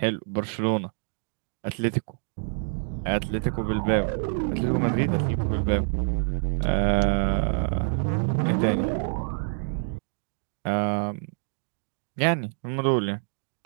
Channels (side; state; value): left; silent; 59 dB below the other